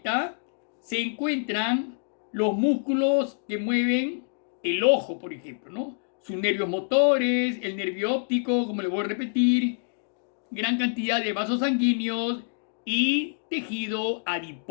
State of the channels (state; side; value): silent; right; digital silence